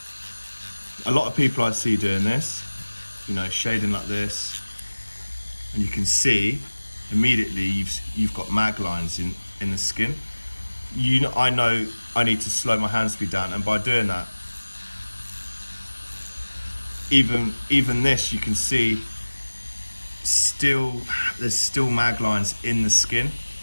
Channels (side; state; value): both; inverted; correlation -1.00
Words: A lot of people I see doing this, shading like this, and you can see immediately you've got mag lines in the skin. I know I need to slow my hand speed down, and by doing that, even this, you can see there's still mag lines in the skin.